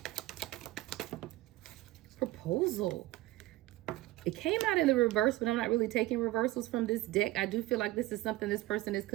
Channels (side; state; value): left; quieter; 17.7 dB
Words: Proposal. It came out in the reverse, but I'm not really taking reversals from this deck. I do feel like this is something this person is